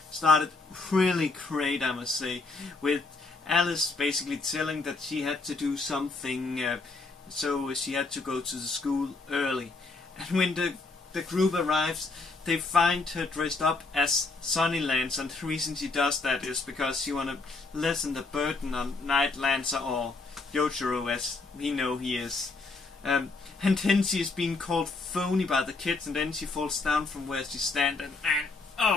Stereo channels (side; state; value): right; quieter; 3.7 dB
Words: started really great, I must say, with Alice basically telling that she had to do something, so she had to go to the school early. And when the group arrives, they find her dressed up as Sunny Lancer, and the reason she does that is because she want to lessen the burden on Night Lancer, or Yojiro as we know he is. And then she is being called phony by the kids, and then she falls down from where she stands, and